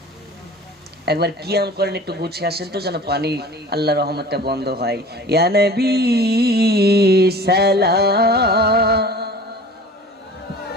একবার কিয়াম করেন, একটু গুছিয়ে আসেন তো যেন পানি আল্লাহ রহমতটা বন্ধ হয়। ইয়া নবী সালাম,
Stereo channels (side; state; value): both; normal; correlation 0.42